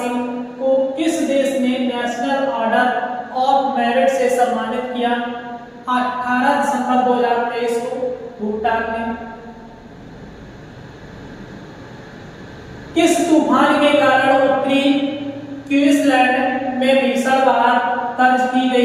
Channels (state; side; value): identical; both; correlation 1.00